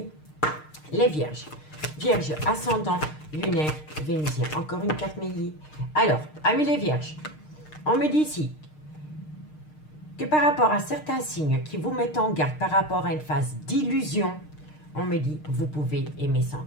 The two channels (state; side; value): late; right; 6.6 ms